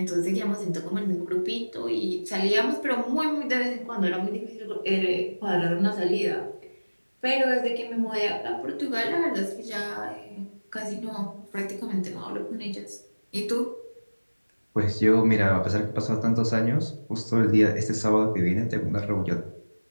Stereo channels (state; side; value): inverted; both; correlation -1.00